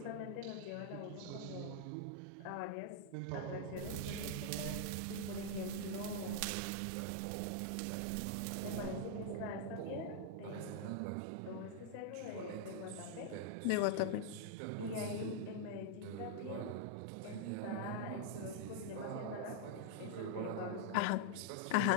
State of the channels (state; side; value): different; both; correlation -0.01